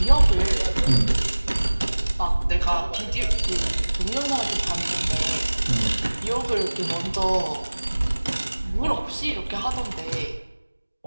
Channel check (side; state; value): both; inverted; correlation -1.00